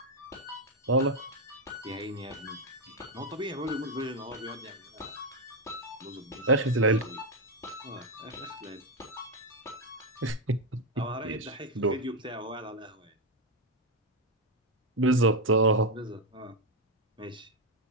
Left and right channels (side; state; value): both; normal; correlation 0.04